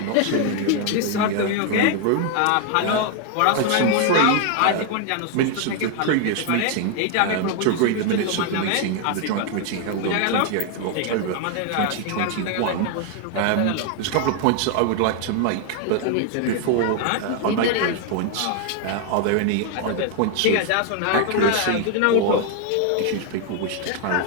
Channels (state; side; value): different; both; correlation 0.00